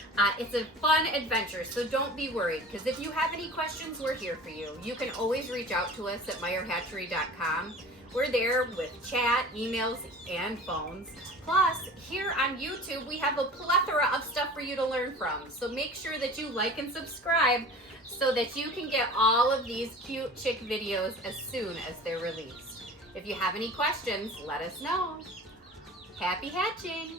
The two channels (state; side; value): normal; both; correlation 0.40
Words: It's a fun adventure, so don't be worried, because if you have any questions, we're here for you. You can always reach out to us at meyerhatchery.com. We're there with chat, emails, and phones. Plus, here on YouTube, we have a plethora of stuff for you to learn from. So make sure that you like and subscribe so that you can get all of these cute chick videos as soon as they're released. If you have any questions, let us know. Happy